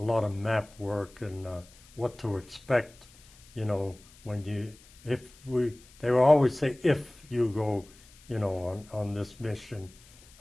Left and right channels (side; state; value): left; noise; hiss, 25 dB below the sound